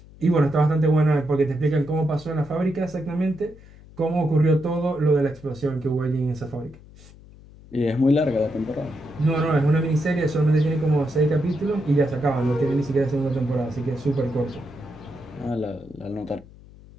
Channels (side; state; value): left; noise; hum, 22 dB below the sound